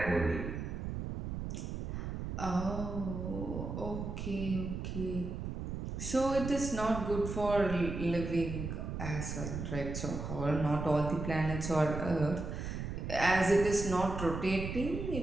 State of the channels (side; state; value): right; noise; rumble, 5 dB below the sound